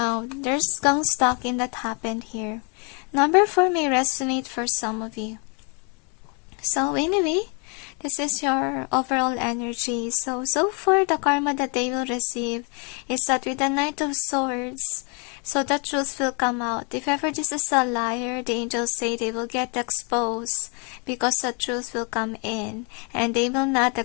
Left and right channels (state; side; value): quieter; right; 34.2 dB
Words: there's gang stalking that happened here. Number 4 may resonate for some of you. So anyway, this is your overall energy. So far, the karma that they will receive is that with the Knight of Swords, so the truth will come out. If ever this is a liar, the angels say they will get exposed because the truth will come in. And they will not